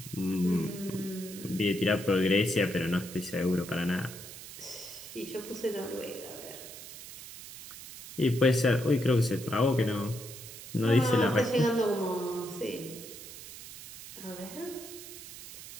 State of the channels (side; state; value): right; noise; hiss, 13 dB below the sound